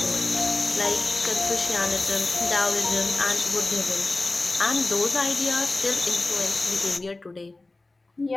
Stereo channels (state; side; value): quieter; right; 3.1 dB